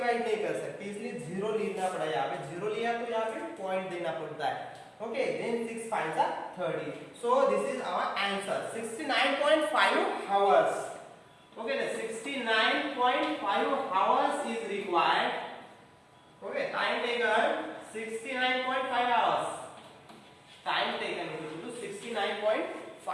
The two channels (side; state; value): both; identical; correlation 1.00